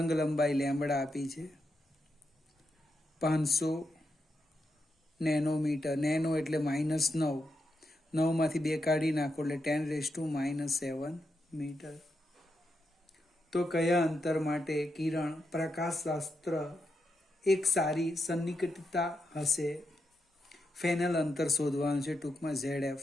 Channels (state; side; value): normal; both; correlation 0.84